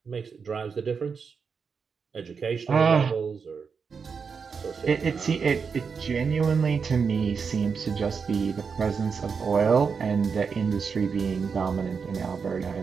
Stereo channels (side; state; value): left; quieter; 5.7 dB